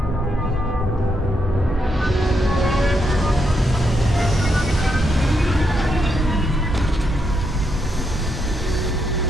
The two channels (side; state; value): both; normal; correlation 0.80